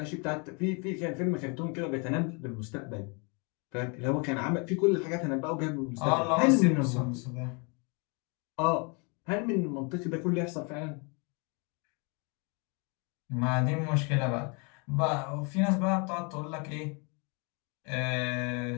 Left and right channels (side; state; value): right; quieter; 33.3 dB